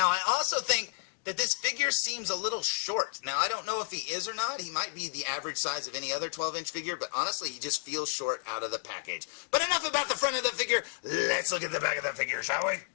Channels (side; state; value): right; silent; digital silence